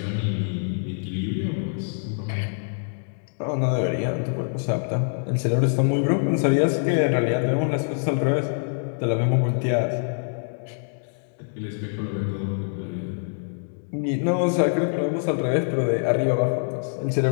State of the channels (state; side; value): silent; right; digital silence